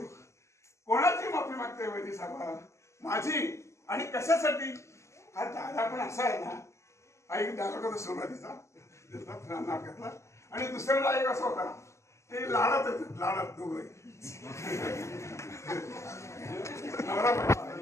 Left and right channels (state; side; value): late; right; 0.13 ms